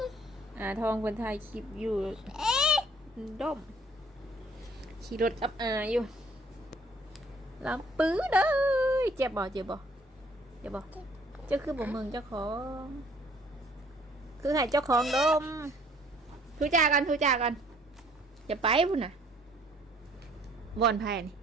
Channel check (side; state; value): both; normal; correlation 0.59